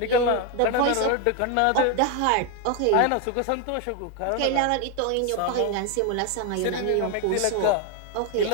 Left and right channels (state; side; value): different; both; correlation 0.01